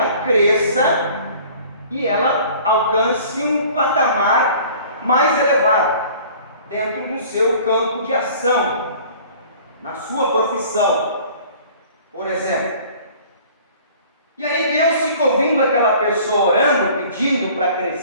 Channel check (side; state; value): both; inverted; correlation -0.49